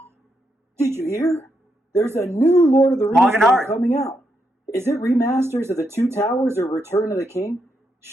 Did you hear? There's a new Lord of the Rings game coming out. Is it remasters of the Two Towers or Return of the King?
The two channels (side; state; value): both; normal; correlation 0.81